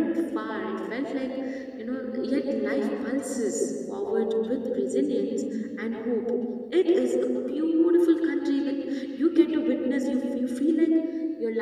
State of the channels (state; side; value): identical; both; correlation 1.00